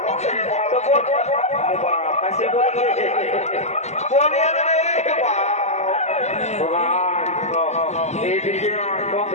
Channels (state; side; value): late; right; 0.33 ms